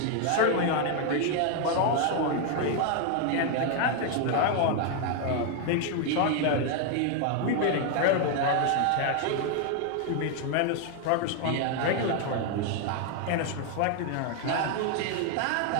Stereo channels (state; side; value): different; both; correlation 0.00